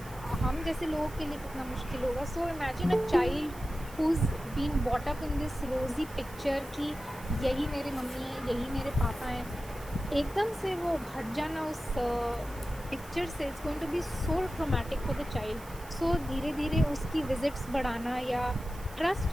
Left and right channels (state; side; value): noise; right; hiss, 20 dB below the sound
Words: हम जैसे लोगों के लिए कितना मुश्किल होगा. So imagine a child who's been brought up in this rosy picture कि यही मेरे मम्मी है, यही मेरे पापा हैं, एकदम से वो हट जाना उस पिक्चर से, it's going to be so traumatic for the child. So धीरे धीरे उसकी विजिट्स बढ़ाना या